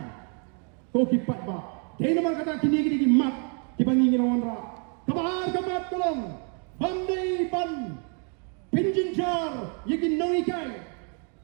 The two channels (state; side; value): quieter; left; 39.9 dB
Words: ko ki patba dei nama kata kini ki mat ki bangi ngirawan ra kabar kamat tolong bandai ban pinjinjar yegi nongi kai